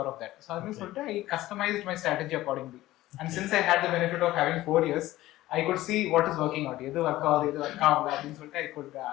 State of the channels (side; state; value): right; quieter; 16.2 dB